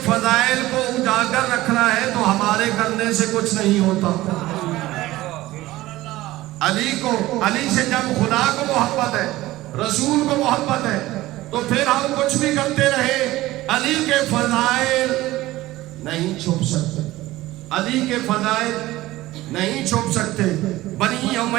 فضائل کو اجاگر رکھنا ہے تو ہمارے کرنے سے کچھ نہیں ہوتا. علی سے جب خدا کو محبت ہے, رسول کو محبت ہے, تو پھر ہم کچھ بھی کرتے رہے علی کے فضائل نہیں چھپ سکتے. علی کے فضائل نہیں چھپ سکتے. بنی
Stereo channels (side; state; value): left; quieter; 17.2 dB